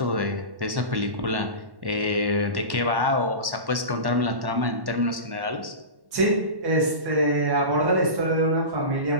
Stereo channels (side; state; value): left; late; 1.1 ms